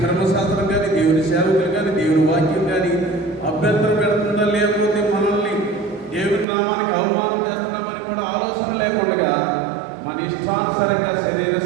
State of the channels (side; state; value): left; drops out; at 6.5 s